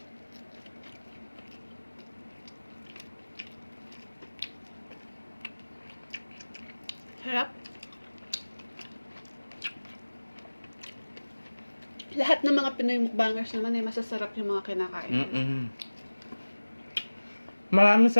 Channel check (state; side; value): inverted; both; correlation -1.00